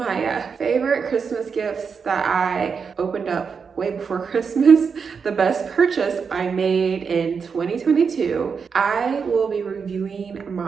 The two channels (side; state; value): left; quieter; 5.9 dB